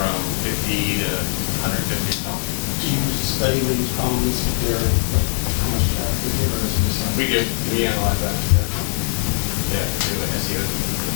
50 to 150 dollars. Do you study with these columnists, if they're, like, how much traffic they get, or is it just like? We do, we analyze that, yeah. Yeah, we do an SEO,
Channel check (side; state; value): right; silent; digital silence